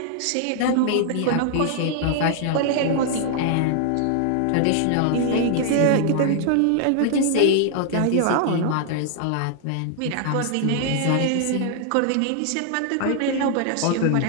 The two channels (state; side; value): different; both; correlation 0.00